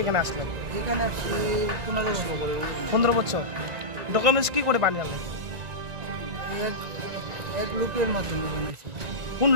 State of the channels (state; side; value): late; left; 1.9 ms